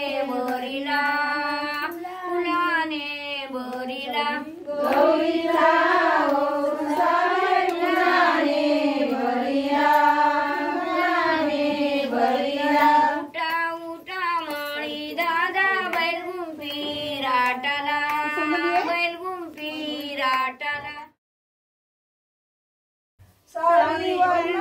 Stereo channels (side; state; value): both; identical; correlation 1.00